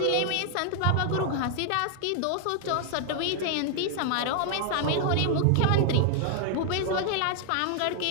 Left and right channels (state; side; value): different; both; correlation 0.00